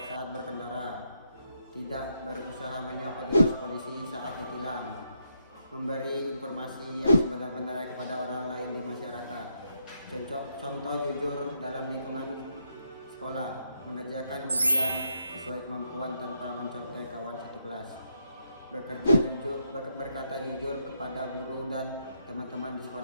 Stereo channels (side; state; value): both; inverted; correlation -0.79